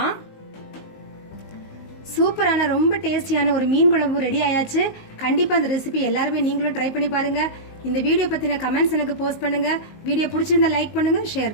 சூப்பரான ரொம்ப டேஸ்டியான ஒரு மீன் குழம்பு ரெடி ஆயாச்சு. கண்டிப்பாக அந்த ரெசிபி எல்லாருமே நீங்களும் ட்ரை பண்ணி பாருங்க. இந்த வீடியோ பற்றின கமெண்ட்ஸ் எனக்கு போஸ்ட் பண்ணுங்க. வீடியோ பிடிச்சிருந்தா லைக் பண்ணுங்க,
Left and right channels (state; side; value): late; right; 19 ms